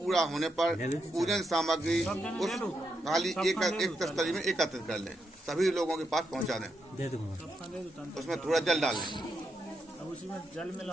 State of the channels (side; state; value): both; normal; correlation 0.82